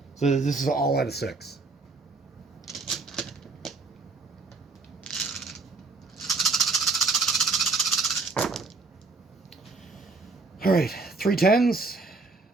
So this is all out of 6. Alright, 3 10s,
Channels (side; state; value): left; quieter; 3.8 dB